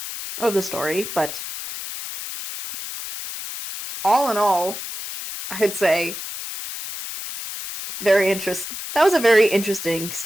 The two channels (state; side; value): noise; left; hiss, 8 dB below the sound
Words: the story. But all in all, I'd say that was a very interesting